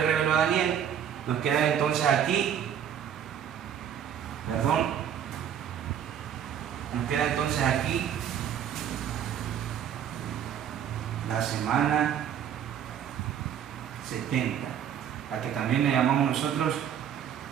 reveló a Daniel, nos quedan entonces aquí, la semana 70, a que también le llamamos nosotros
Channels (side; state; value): left; quieter; 9.1 dB